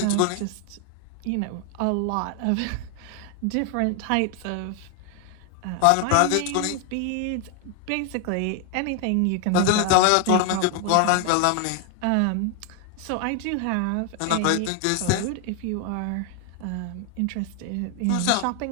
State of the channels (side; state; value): both; different; correlation 0.01